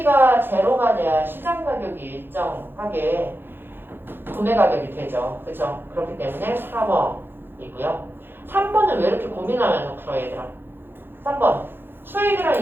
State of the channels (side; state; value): left; late; 0.10 ms